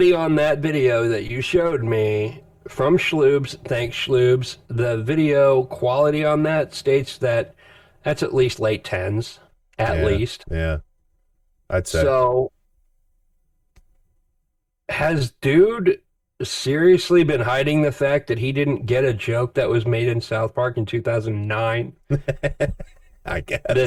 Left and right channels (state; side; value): identical; both; correlation 1.00